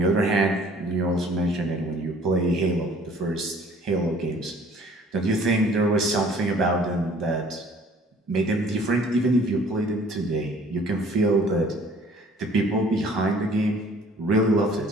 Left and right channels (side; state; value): both; normal; correlation 0.54